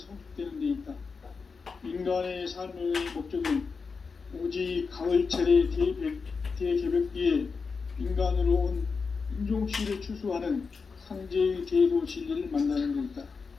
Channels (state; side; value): quieter; right; 5.0 dB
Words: 데 있다. 인간의 삶의 목적은 오직 가을철의 대개벽기에 인간으로 온 인종시를 추수하는 상제의 제도 진리를 만나는 데 있다.